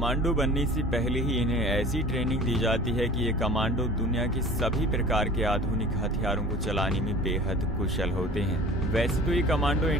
बनने से पहले ही इन्हें ऐसी ट्रेनिंग दी जाती है कि ये कमांडो दुनिया के सभी प्रकार के आधुनिक हथियारों को चलाने में बेहद कुशल होते हैं। वैसे तो ये कमांडो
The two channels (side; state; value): both; normal; correlation 0.42